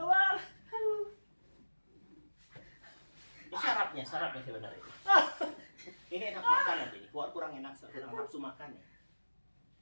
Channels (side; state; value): both; inverted; correlation -1.00